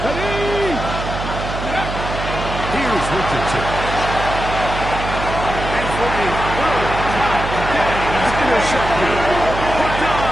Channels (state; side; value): noise; right; hum, 6 dB below the sound